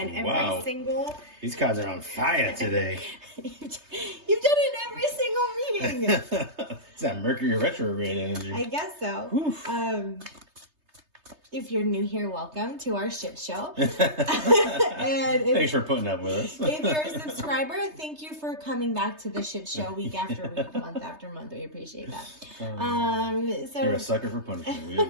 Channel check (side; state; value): left; late; 3.3 ms